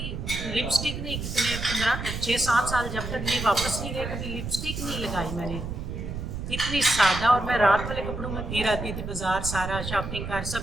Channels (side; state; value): right; noise; rumble, 6 dB below the sound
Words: लिपस्टिक नहीं, कितने 15-6-7 साल जब तक ये वापस नहीं गए, कभी लिपस्टिक नहीं लगाई मैंने, इतनी सादा। और मैं रात वाले कपड़ों में फिर आती थी बाजार, सारा शॉपिंग कर,